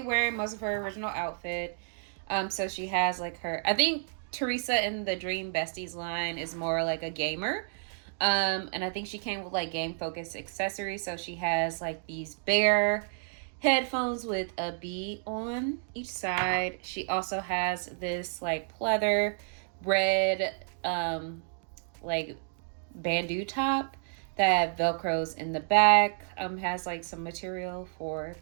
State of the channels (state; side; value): silent; left; digital silence